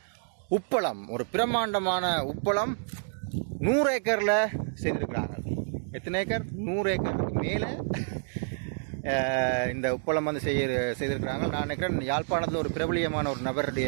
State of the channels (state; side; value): silent; left; digital silence